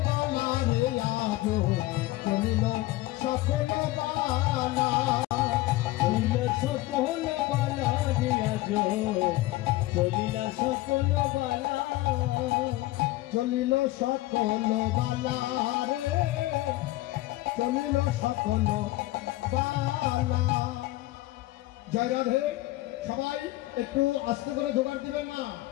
বালা রে আজ। চলিল সকল বালা। চলিল সকল বালা রে আজ। চলিল সকল বালা। চলিল সকল বালা রে। চলিল সকল বালা। জয় রাধে। সবাই একটু আস্তে করে জোগাড় দিবেন না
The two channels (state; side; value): quieter; right; 18.1 dB